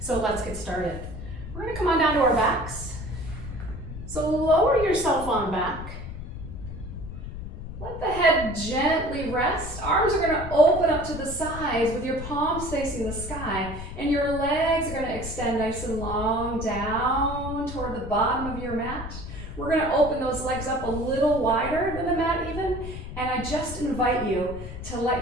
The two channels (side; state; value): left; noise; rumble, 9 dB below the sound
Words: let's get started. We're going to come on down to our backs. So lower yourself on back. Let the head gently rest. Arms are going to open up to the sides with your palms facing the sky, and your legs are going to extend nice and long down toward the bottom of your mat. We're going to open those legs up a little wider than the mat even, and I just invite you to